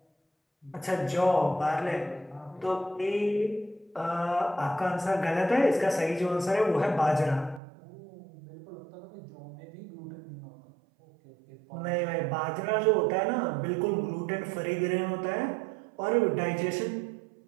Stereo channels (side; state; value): left; drops out; at 7.6 s